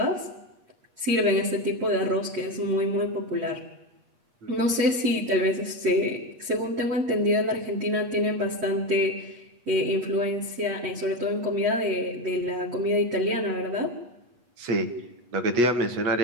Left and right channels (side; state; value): left; late; 8.3 ms